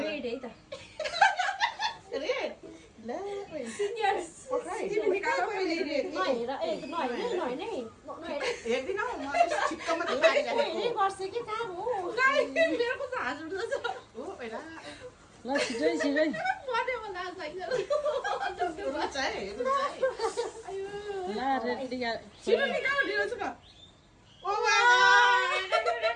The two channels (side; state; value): both; identical; correlation 1.00